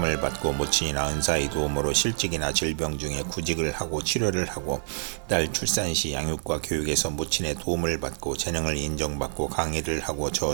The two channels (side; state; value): left; silent; digital silence